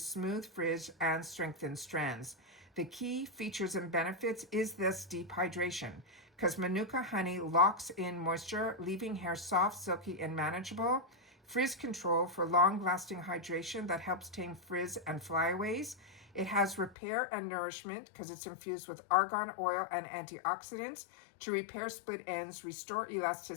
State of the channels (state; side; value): drops out; right; at 16.9 s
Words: frizz, and strengthen strands. The key features and benefits is this deep hydration, because Manuka honey locks in moisture, leaving hair soft, silky, and manageable. Frizz control for long-lasting hydration that helps tame frizz and flyaways. It has repair and nourishment because it's infused with argan oil and antioxidants to repair split ends, restore